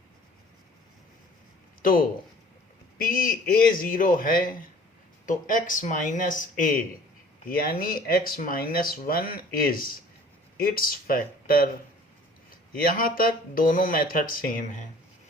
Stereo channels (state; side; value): normal; both; correlation 0.50